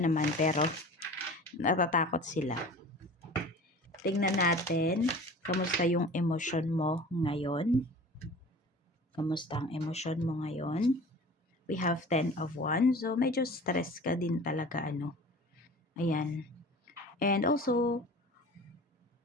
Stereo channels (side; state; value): both; normal; correlation 0.41